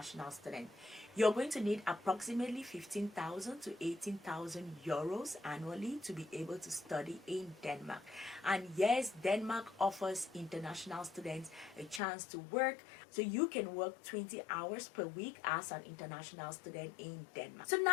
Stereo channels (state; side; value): drops out; right; at 12.0 s